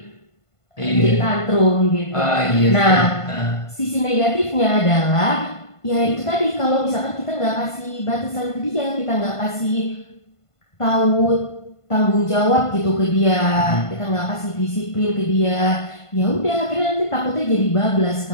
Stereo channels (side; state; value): right; late; 1.5 ms